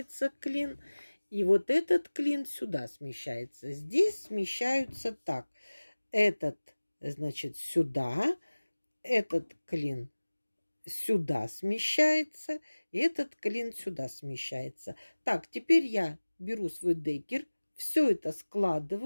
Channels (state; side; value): inverted; both; correlation -1.00